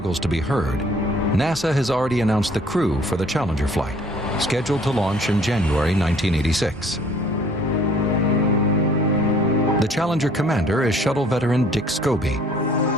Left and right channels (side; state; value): both; normal; correlation 0.56